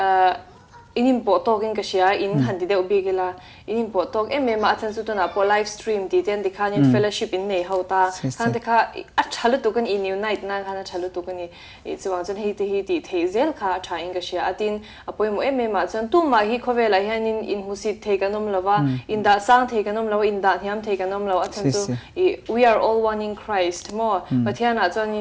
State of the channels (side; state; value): both; identical; correlation 1.00